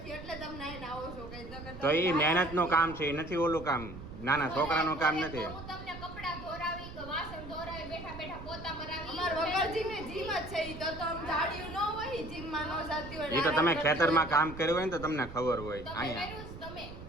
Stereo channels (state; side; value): noise; right; rumble, 12 dB below the sound